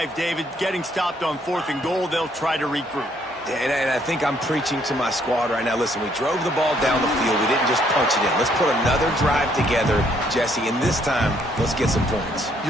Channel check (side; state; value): both; normal; correlation 0.68